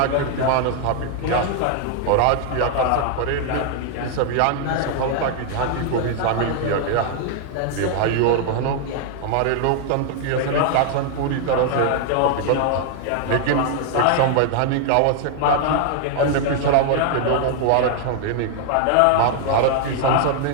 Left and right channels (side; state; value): both; different; correlation 0.00